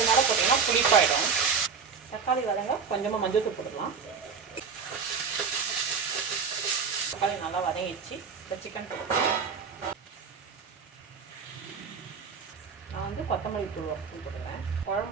மேலே போட்டிங்கன்னா புளிப்பாயிடும். தக்காளி வதங்க கொஞ்சமாக மஞ்சள் தூள் போட்டுக்கலாம். தக்காளி நல்லா வதங்கிச்சு. இப்போ சிக்கன் போட்டுக்கலாம். நான் கொத்தமல்லி தூள் 1 ஸ்பூன் போட்டுக்கிறேன்.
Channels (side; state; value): left; quieter; 5.9 dB